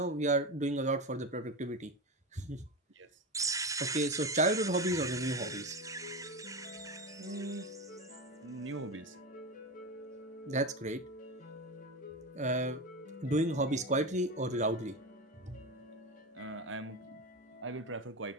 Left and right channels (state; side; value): normal; both; correlation 0.20